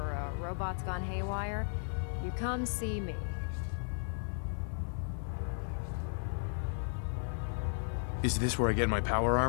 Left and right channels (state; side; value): silent; right; 54 dB below the other